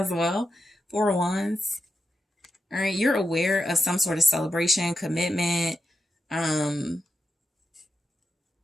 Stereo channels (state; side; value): normal; both; correlation 0.88